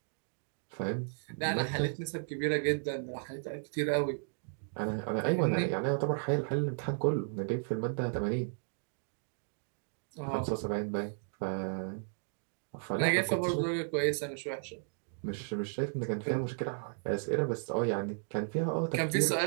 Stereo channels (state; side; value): silent; left; digital silence